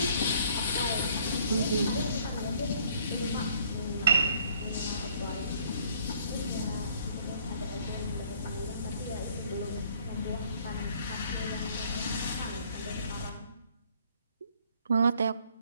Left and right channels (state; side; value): inverted; both; correlation -0.61